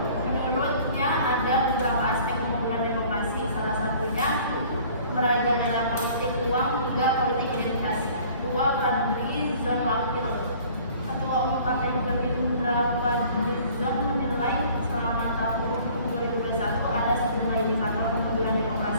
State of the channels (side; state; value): both; inverted; correlation -0.52